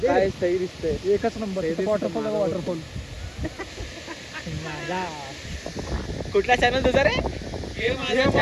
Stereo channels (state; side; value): identical; both; correlation 1.00